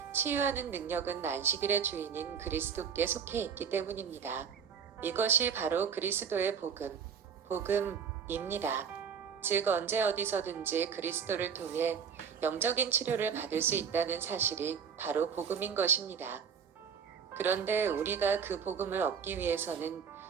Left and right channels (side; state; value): left; quieter; 6.9 dB